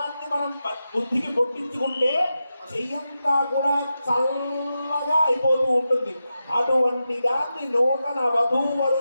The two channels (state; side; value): inverted; both; correlation -0.90